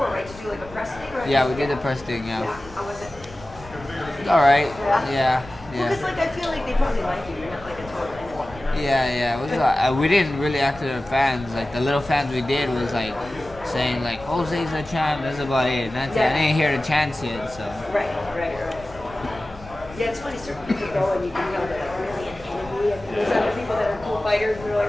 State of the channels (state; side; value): noise; left; rumble, 18 dB below the sound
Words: right, to do like a press thing? Or Yeah, we did the press thing, yeah. How was it? It's alright. Yeah? Yeah. Because, like, I feel like they probably like you. You're not like a total enemy. Yeah. It was, we didn't really act to the fans. Like, the little fans we did was, like, saying, like, Jose's a champ, that's about it. That's it. I didn't hear the chants yet, so. Right. Yeah, it's funny, certain people go and you can tell they're like really an enemy, and there's other people that are cool fighters and you're like,